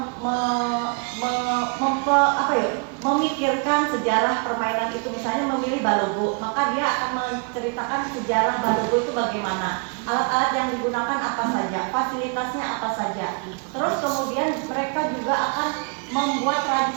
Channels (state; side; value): quieter; left; 36.3 dB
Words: memikirkan sejarah permainan itu. Misalnya memilih balogo, maka dia akan menceritakan sejarah balogo itu bagaimana, alat-alat yang digunakan apa saja, fasilitasnya apa saja. Terus kemudian mereka juga akan membuat